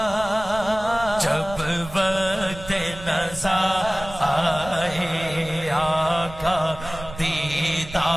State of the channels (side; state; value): right; noise; rumble, 14 dB below the sound